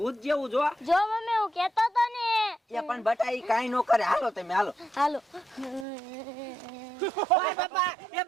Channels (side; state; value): left; drops out; at 5.9 s